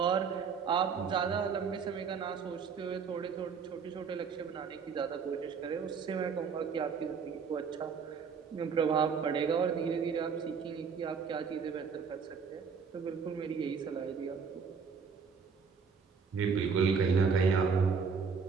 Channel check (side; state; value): left; quieter; 5.9 dB